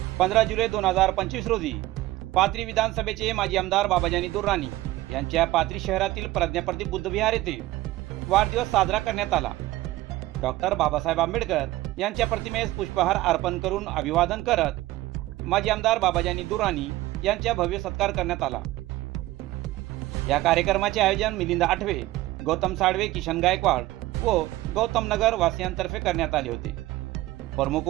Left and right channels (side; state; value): left; quieter; 17.2 dB